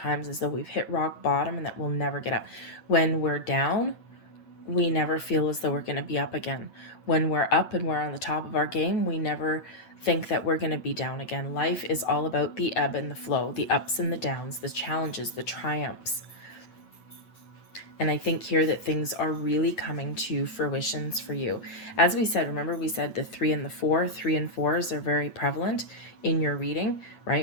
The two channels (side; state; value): right; late; 8.9 ms